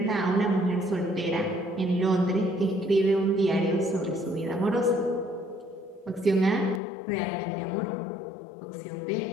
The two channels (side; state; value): right; drops out; at 6.8 s